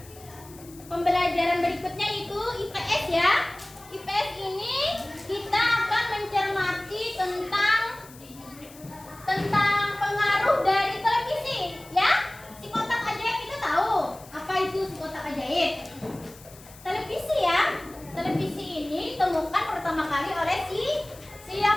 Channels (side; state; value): left; noise; hiss, 21 dB below the sound